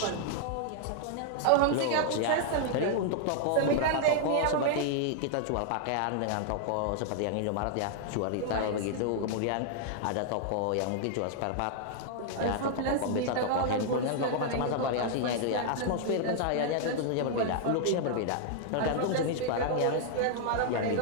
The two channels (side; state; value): both; different; correlation -0.01